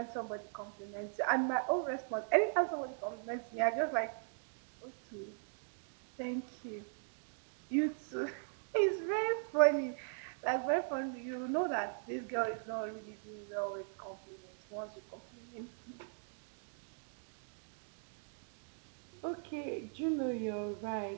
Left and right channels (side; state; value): left; silent; digital silence